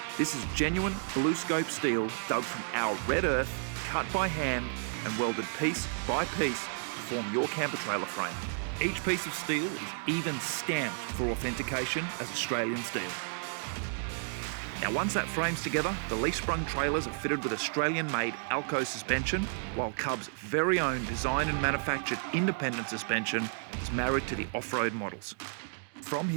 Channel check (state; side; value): silent; left; digital silence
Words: This is genuine blue scope steel dug from our red earth, cut by hand and welded piece by piece to form your camper trailer frame. Each piece of steel is even stamped for authentication as Australian steel. Now once that frame's together, the leaf-sprung trailers are fitted with Australian-made Alco suspension, while Cub's very own designed and manufactured independent suspension is married to the off-road models. From